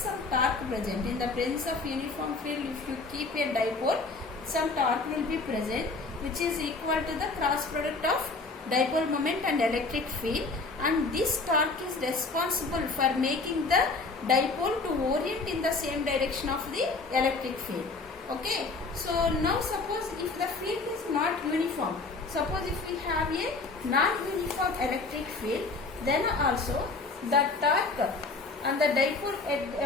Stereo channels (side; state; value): right; quieter; 3.8 dB